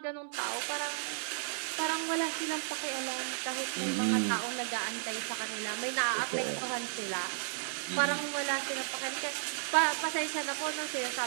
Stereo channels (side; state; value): left; silent; digital silence